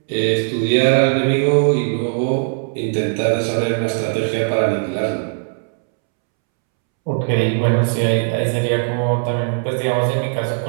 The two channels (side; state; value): left; silent; 67 dB below the other